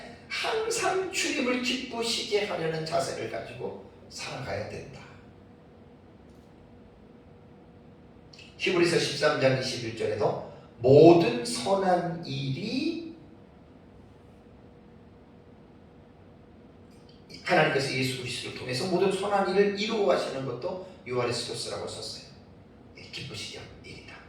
항상 주님을 기쁘시게 하려는 자세를 가지고 살아가야 된다. 히브리서 13장 21절에도 모든 선한 일이 하나님께서 예수 그리스도를 통해서 모든 선한 일을 이루어 하시는 것도 유아레스토스라고 썼어요. 기쁘시게 하는 일이다.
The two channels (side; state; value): both; identical; correlation 1.00